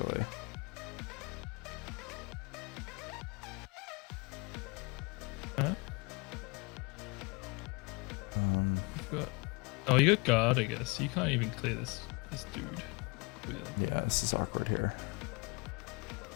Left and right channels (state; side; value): quieter; right; 28.9 dB